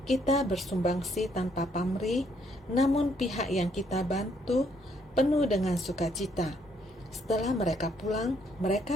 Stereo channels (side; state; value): both; normal; correlation 0.70